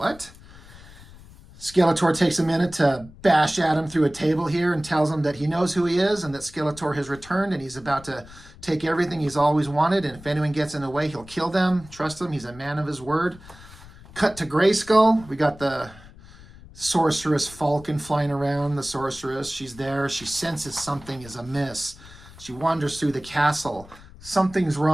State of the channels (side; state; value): left; noise; rumble, 20 dB below the sound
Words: Skeletor takes a minute to bash Adam through a table here and tells him that he knows who he is and that Skeletor has returned and he's about to take everything he's always wanted, and if anyone gets in the way, he'll kill them. Trust him, he's a man of his word. Cut to Grayskull. We got the sorceress Falcon flying around. The sorceress, she's there. She senses something is amiss. She wanders through the castle. Something's